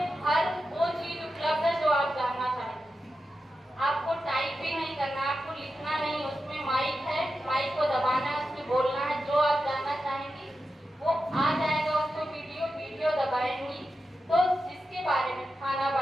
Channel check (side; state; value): both; normal; correlation 0.90